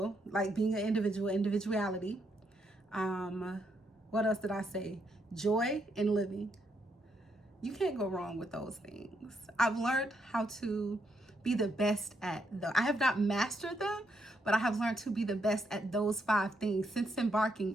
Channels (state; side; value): normal; both; correlation 0.77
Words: like being an individual, individuality. What else did I say? Joy and living. You can't go wrong with those things. I've learned how to be the best at them. I have not mastered them, but I have learned to be the best at those 5 things since